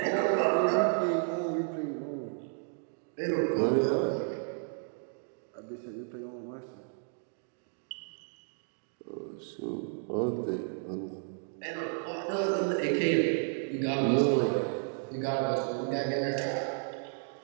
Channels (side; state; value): left; silent; 56 dB below the other